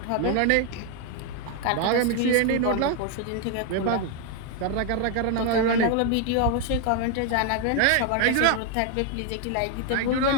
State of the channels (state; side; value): different; both; correlation 0.01